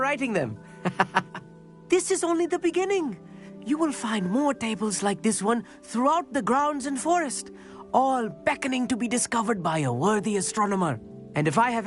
them. This is only the beginning. You will find more tables like this one throughout the grounds and forest, all beckoning to be discovered by a worthy astronomer. And if I have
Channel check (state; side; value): identical; both; correlation 1.00